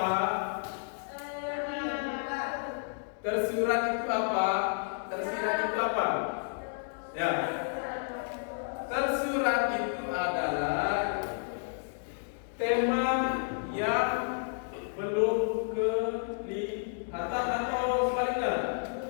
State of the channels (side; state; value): right; silent; digital silence